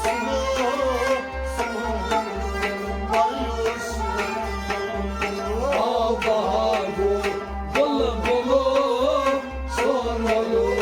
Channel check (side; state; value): both; identical; correlation 1.00